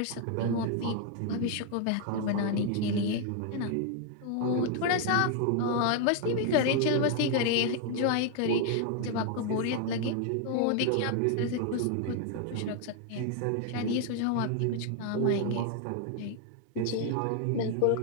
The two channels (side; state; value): both; different; correlation 0.00